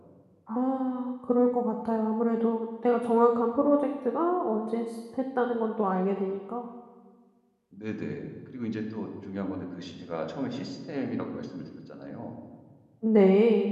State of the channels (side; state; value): both; identical; correlation 1.00